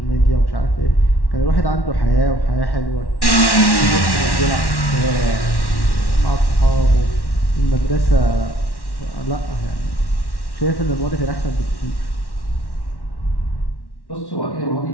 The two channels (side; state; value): right; late; 1.1 ms